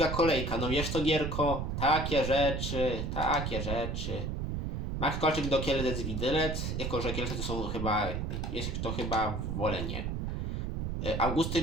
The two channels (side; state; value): right; noise; rumble, 2 dB below the sound